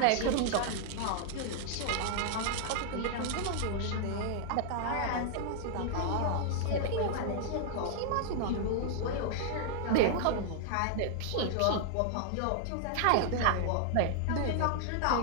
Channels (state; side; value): different; both; correlation -0.01